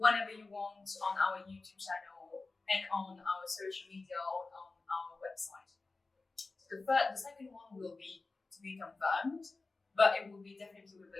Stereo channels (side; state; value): right; quieter; 3.6 dB